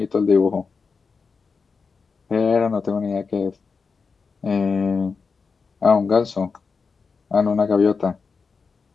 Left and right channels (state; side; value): quieter; right; 5.0 dB